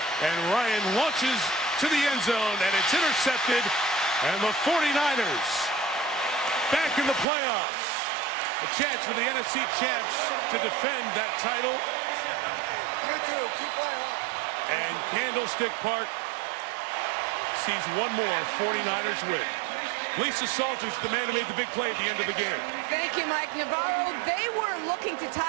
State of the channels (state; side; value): drops out; left; at 7.2 s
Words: And Ryan launches to the end zone, and it's intercepted. And the 49ers back in the playoffs. A chance for the NFC champs to defend that title. And Candlestick Park sees one more 49ers win. Lisa Salters, the man who made the big play at the end of the game. Thank you, Mike Navarro. They were looking to